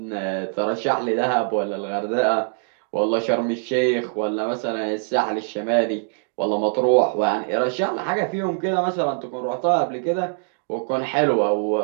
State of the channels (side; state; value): left; silent; digital silence